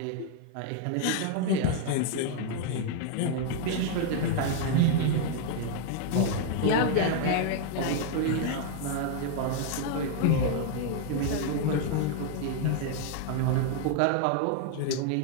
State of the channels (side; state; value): both; different; correlation 0.00